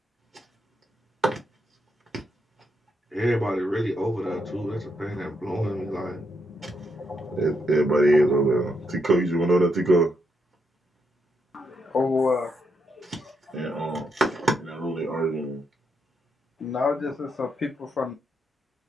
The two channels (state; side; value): normal; both; correlation 0.80